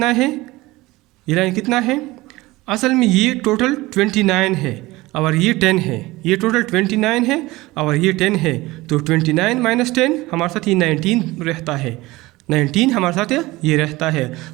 है? ये लाइन कितना है? असल में ये टोटल 29 है और ये 10 है। ये टोटल 29 है और ये 10 है, तो 29 माइनस 10 हमारे साथ ये 19 रहता है। 19 हमारे साथ ये रहता है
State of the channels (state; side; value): quieter; left; 20.0 dB